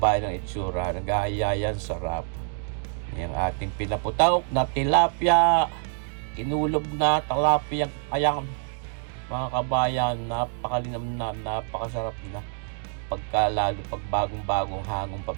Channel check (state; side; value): silent; left; 59 dB below the other